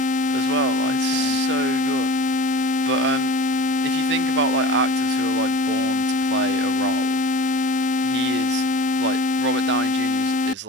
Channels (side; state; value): both; normal; correlation 0.39